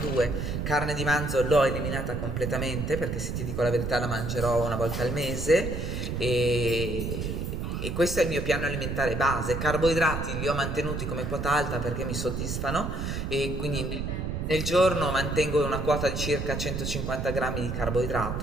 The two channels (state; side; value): noise; right; rumble, 3 dB below the sound